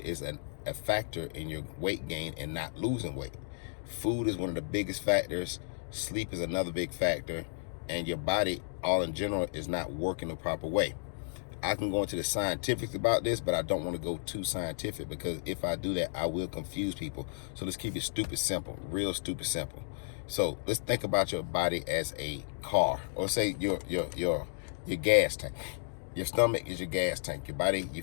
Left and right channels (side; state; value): right; silent; digital silence